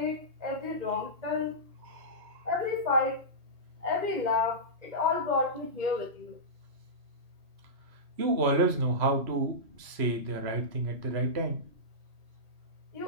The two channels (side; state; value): left; late; 3.0 ms